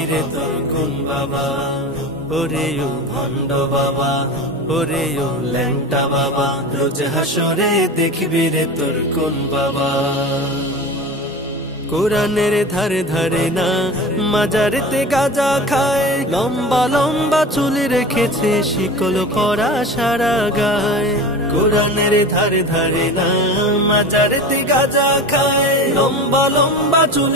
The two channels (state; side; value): normal; both; correlation 0.32